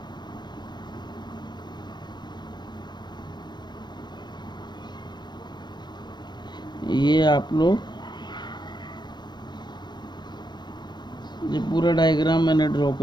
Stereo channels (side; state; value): right; late; 0.21 ms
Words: ये आप लोग, ये पूरा डायग्राम मैंने ड्रॉ